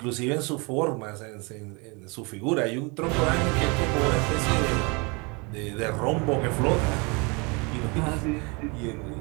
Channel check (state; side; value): quieter; left; 29.7 dB